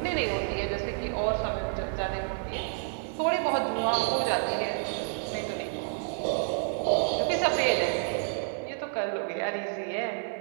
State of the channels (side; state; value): left; silent; 58 dB below the other